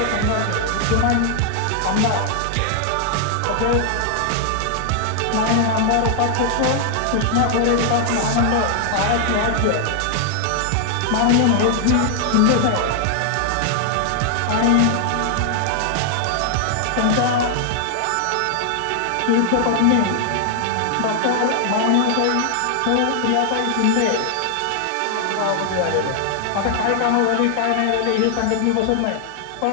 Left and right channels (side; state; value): both; different; correlation 0.00